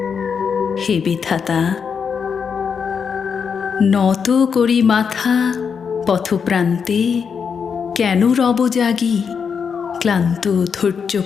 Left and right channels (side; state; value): right; quieter; 6.4 dB